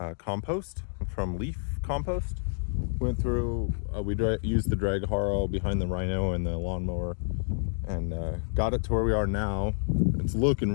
compost from leaf compost. Went through, we used the drag Harrow behind the Rhino and the lawnmower and got it to where we are now. It's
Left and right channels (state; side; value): silent; right; digital silence